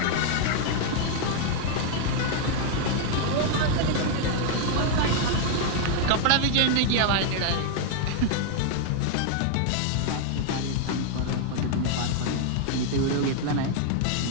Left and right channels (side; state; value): both; different; correlation 0.00